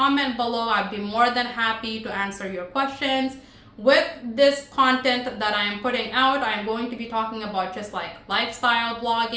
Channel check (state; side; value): identical; both; correlation 1.00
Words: below. I'd be more than happy to answer your questions. With this content that I am putting out, I'm going to be talking about just like lifestyle